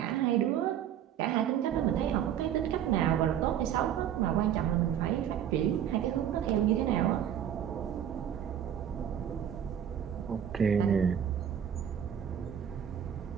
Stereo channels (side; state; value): left; quieter; 9.6 dB